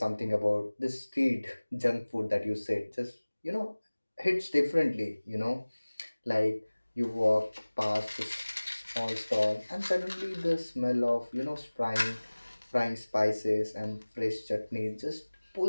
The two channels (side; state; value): both; inverted; correlation -1.00